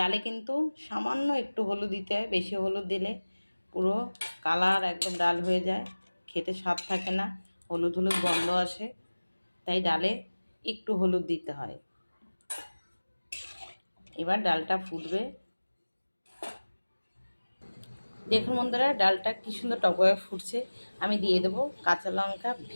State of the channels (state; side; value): inverted; both; correlation -1.00